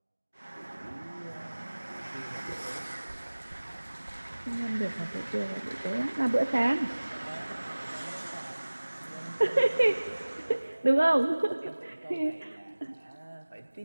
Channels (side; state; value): both; inverted; correlation -1.00